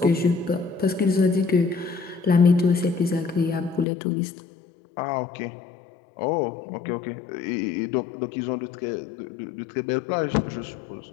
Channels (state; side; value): drops out; right; at 3.9 s